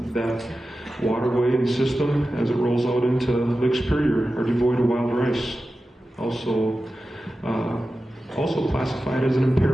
that waterway and system as it rolls out into Lake Superior are devoid of wild rice. Also classified as an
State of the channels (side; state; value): both; normal; correlation 0.94